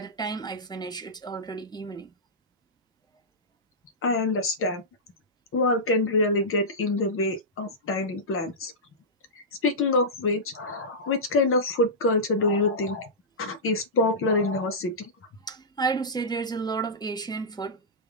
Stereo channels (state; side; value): normal; both; correlation -0.13